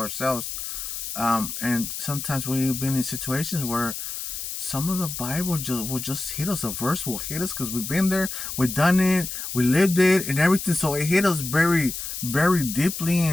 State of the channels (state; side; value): noise; left; hiss, 6 dB below the sound